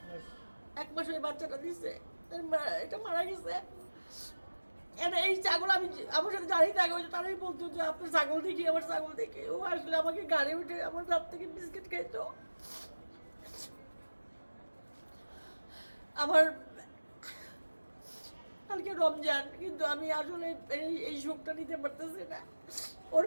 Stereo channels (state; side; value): inverted; both; correlation -1.00